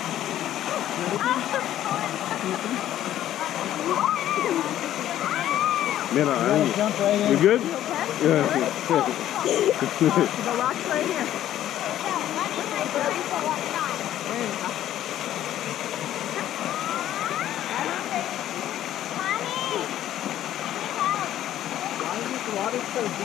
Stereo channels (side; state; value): right; quieter; 12.2 dB